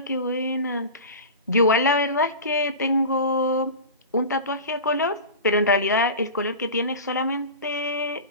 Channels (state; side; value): inverted; both; correlation -0.30